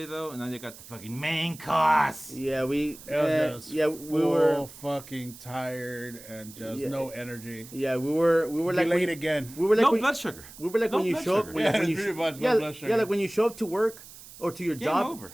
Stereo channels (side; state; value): right; noise; hiss, 18 dB below the sound